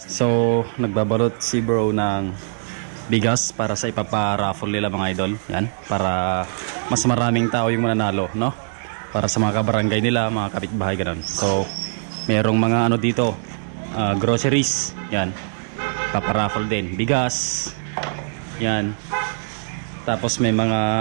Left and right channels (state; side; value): silent; left; 64 dB below the other